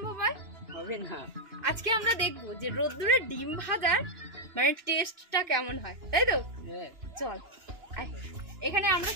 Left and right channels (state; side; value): late; left; 2.9 ms